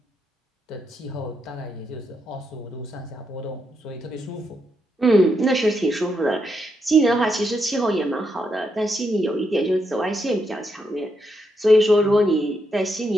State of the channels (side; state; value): both; normal; correlation 0.81